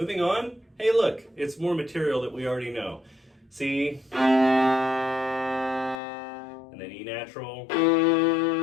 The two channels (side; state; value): right; drops out; at 6.0 s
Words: on. Hey, look, it's more material that we already know. C, and then E natural.